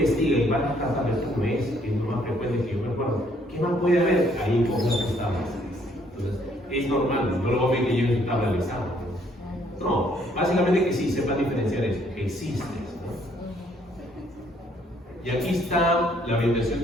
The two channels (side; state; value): both; normal; correlation 0.66